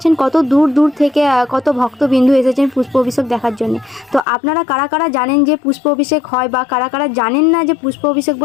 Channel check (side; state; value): right; drops out; at 4.2 s